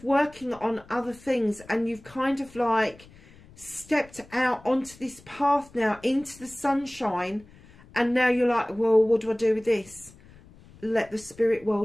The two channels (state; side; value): noise; left; rumble, 24 dB below the sound